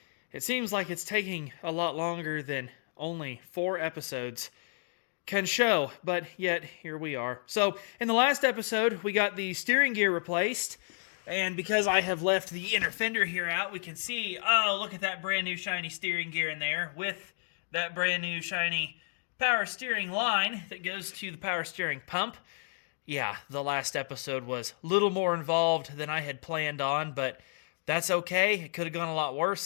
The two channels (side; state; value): right; silent; digital silence